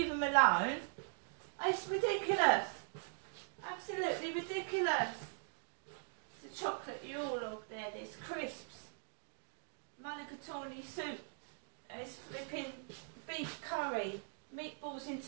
them alone. It's ridiculous. Absolutely ridiculous. The chocolate Yule-log there, there's crisps, mulligatawny soup, there's flipping beef curry, meatballs in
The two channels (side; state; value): left; silent; digital silence